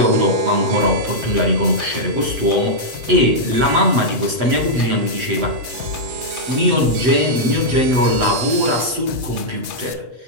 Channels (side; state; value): left; late; 7.6 ms